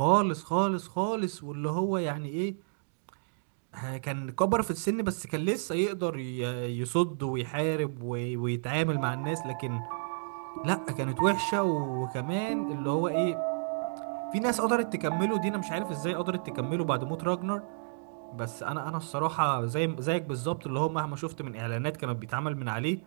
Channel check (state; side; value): silent; left; digital silence